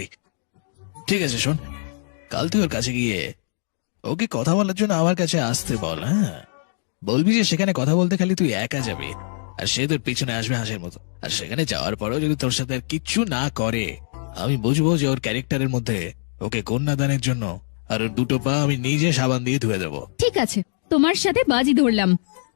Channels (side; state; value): right; silent; digital silence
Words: ঠিক আছে শোন, কাল তুই ওর কাছে গিয়ে ওকে কথা বলার জন্য আমার কাছে আসতে বল। হ্যাঁ, বলবি যে সেখানে কথা বলতে খালি তুই একা যাবি, আর সে তোর পিছনে আসবে হাঁসের মতো। আর সেখানে যাওয়ার পরেও যদি তোর সাথে আর কিচ্ছু না করে, আমি বুঝবো যে ওর ক্যারেক্টারের মধ্যে ওকে কন্যাদানের জন্য আর ওর দুটো পা আমি নিজে সাবান দিয়ে ধুয়ে দেবো। ঠিক আছে, তোমার সাথে বাজি ধরলাম।